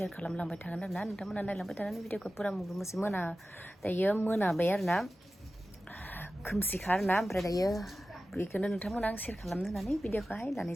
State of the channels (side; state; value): both; normal; correlation 0.95